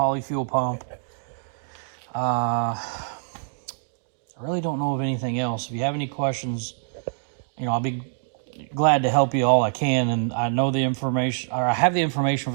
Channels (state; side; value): silent; left; digital silence